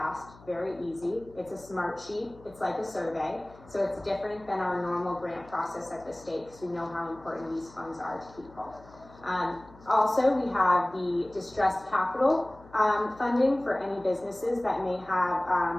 very easy. It's a smart sheet. It's like a survey. So it's different than our normal grant process at the state because we know how important these funds are to people. Also, we have the distressed capital funding for any businesses that may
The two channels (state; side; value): noise; left; hum, 23 dB below the sound